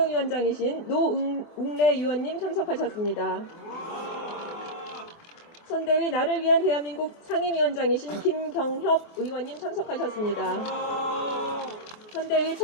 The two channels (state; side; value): late; right; 28 ms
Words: 노웅래 의원님 참석하셨습니다. 선대위 나를 위한 대한민국 상임위원장이신 김경협 의원님 참석하셨습니다. 선대위